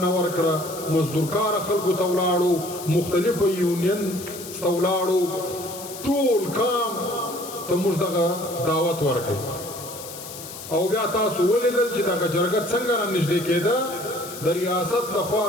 ورکړه، مزدورکاره خلکو ته ولاړو، مختلفو یونین ته ولاړو، ټول کام ته موږ دغه دعوت ورکړ. او بیا تاسو ولیدل چې دغه جرګه څنګه را نږدې کېده، د ریاست لخوا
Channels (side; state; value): left; noise; hiss, 12 dB below the sound